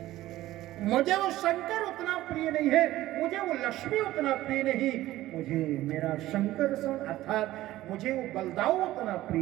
मुझे वो शंकर उतना प्रिय नहीं है, मुझे वो लक्ष्मी उतना प्रिय नहीं, मुझे मेरा शंकर अर्थात मुझे वो बलदाऊ उतना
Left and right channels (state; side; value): quieter; left; 15.6 dB